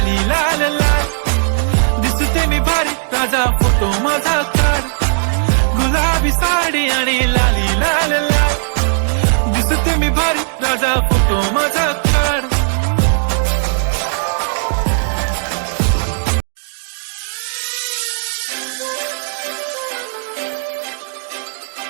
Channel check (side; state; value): left; silent; digital silence